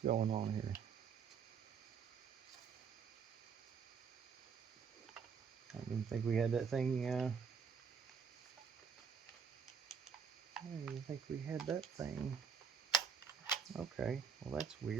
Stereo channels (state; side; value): quieter; left; 6.5 dB